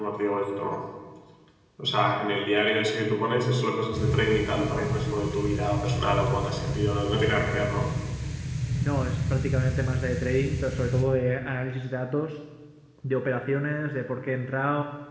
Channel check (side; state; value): both; identical; correlation 1.00